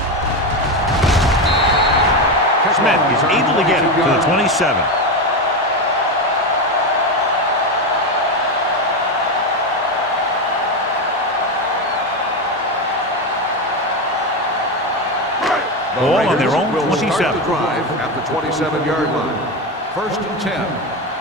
Smith is able to get it to the 27. Ball on their own 27. Start the drive at the 27-yard line. 1st and 10. I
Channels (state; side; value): normal; both; correlation 0.14